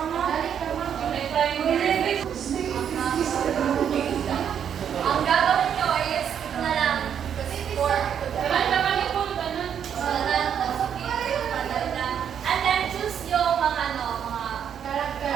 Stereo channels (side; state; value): left; quieter; 8.5 dB